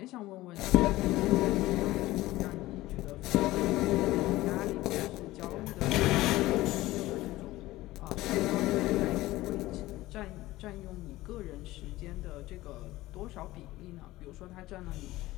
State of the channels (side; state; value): right; quieter; 17.5 dB